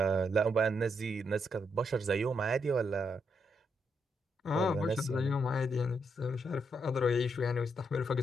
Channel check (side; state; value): both; normal; correlation 0.78